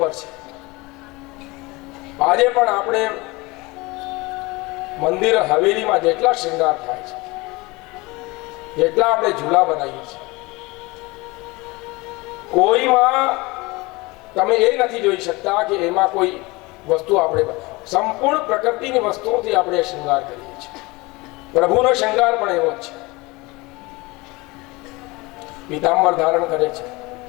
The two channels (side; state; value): right; quieter; 23.6 dB